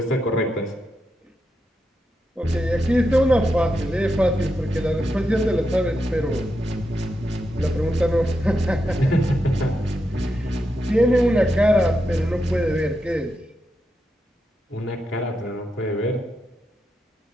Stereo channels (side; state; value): both; normal; correlation 0.86